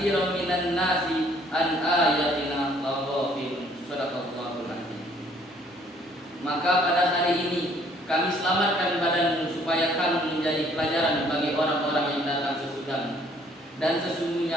minan nasi an ayatina laghafilun. Shadaqallahul azim. Maka pada hari ini kami selamatkan badanmu supaya kamu menjadi pelajaran bagi orang-orang yang datang sesudahmu. Dan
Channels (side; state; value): both; normal; correlation 0.61